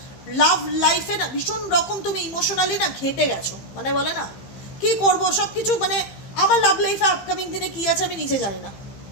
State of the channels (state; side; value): late; right; 15 ms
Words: লাভ লাইফে না ভীষণ রকম তুমি ইমোশনালি না ঘেটে গেছো, মানে বলে না কি করব সব কিছু, মানে আমার লাভ লাইফে আপকামিং দিনে কি আছে আমি নিজে জানি না।